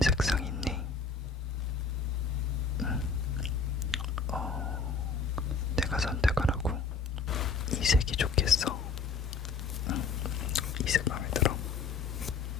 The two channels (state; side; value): quieter; right; 4.8 dB